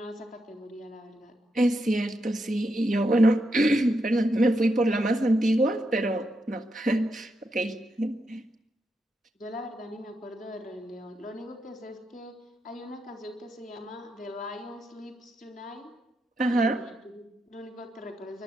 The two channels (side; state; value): both; normal; correlation 0.83